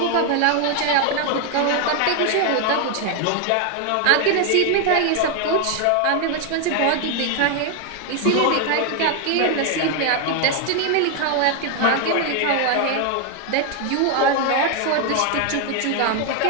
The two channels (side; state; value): both; different; correlation 0.00